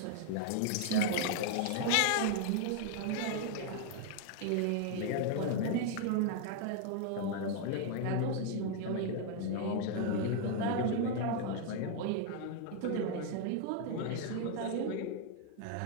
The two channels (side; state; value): both; different; correlation 0.00